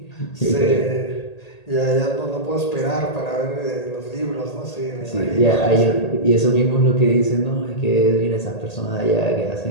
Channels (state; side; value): late; right; 1.8 ms